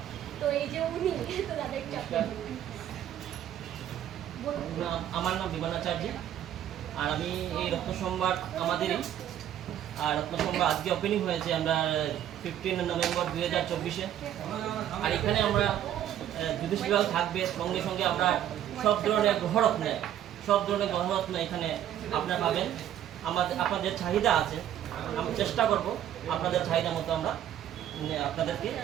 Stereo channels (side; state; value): left; quieter; 11.0 dB